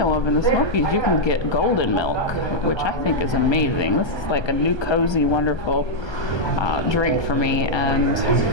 of in the Smokies you can get golden milk, which I think is amazing. This is like a new cozy, wonderful drink for me. And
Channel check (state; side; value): late; right; 1.3 ms